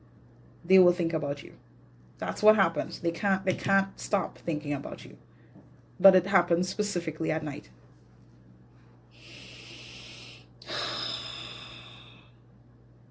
they will think about you. That's what happens. They can't stop thinking about you. But it happens specifically at night.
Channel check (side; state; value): both; identical; correlation 1.00